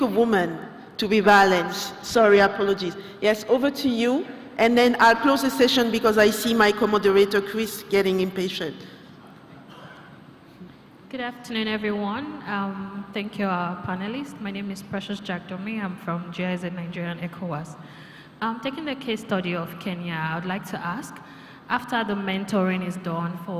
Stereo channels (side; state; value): both; identical; correlation 1.00